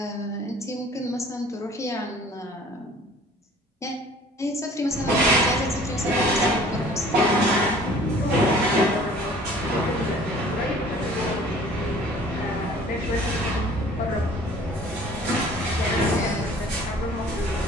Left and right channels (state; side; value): normal; both; correlation 0.50